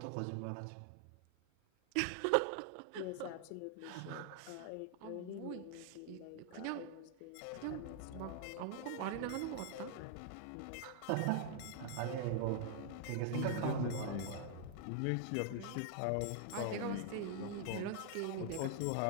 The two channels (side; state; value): both; different; correlation 0.00